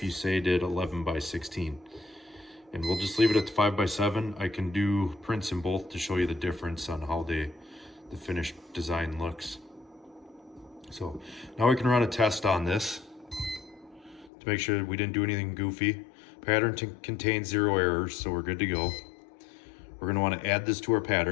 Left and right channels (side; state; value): right; drops out; at 14.3 s